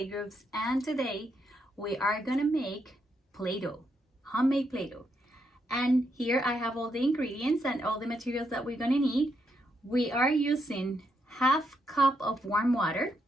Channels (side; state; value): both; normal; correlation 0.79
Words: and today we are gonna make Play-Doh, homemade Play-Doh. And here I have all the ingredients and all the materials that we're gonna need. We are using half cup of warm water,